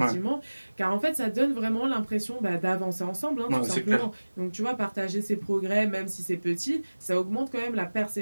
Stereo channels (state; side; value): inverted; both; correlation -1.00